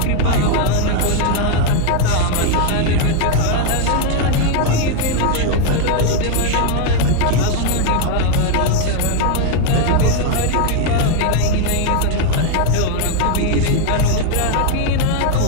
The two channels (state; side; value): different; both; correlation 0.01